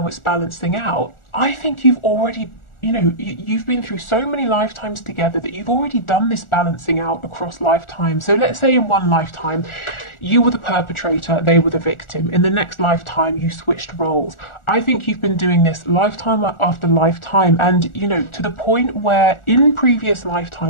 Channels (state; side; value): late; right; 1.4 ms